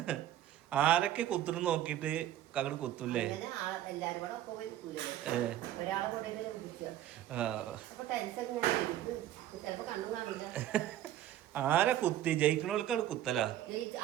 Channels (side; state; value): left; quieter; 12.4 dB